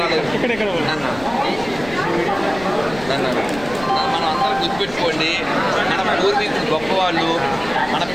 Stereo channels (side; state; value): left; noise; rumble, 16 dB below the sound